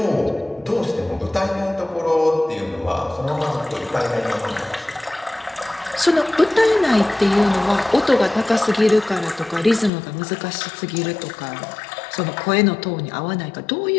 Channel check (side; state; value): right; drops out; at 9.9 s